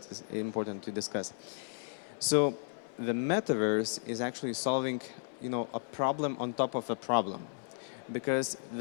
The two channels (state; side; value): silent; right; 55 dB below the other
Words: is important to discuss. So the metaverse is actually solving, a problem on top of a problem. Because